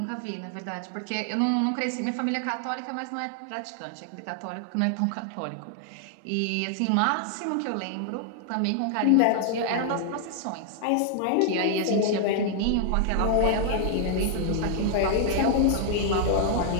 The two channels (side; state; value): both; different; correlation 0.00